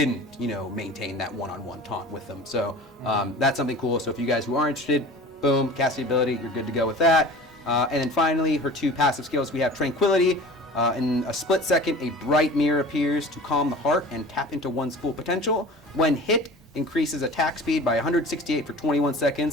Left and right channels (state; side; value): normal; both; correlation 0.40